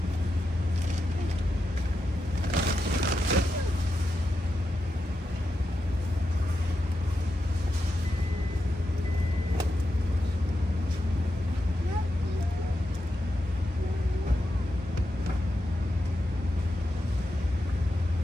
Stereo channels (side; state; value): both; normal; correlation 0.88